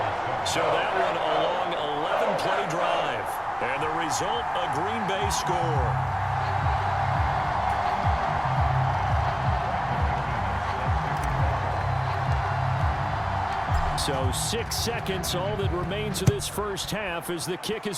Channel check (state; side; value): identical; both; correlation 1.00